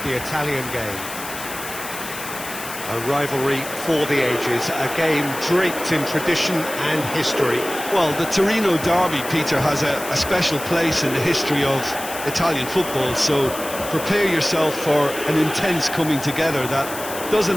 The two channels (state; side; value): noise; left; hiss, 10 dB below the sound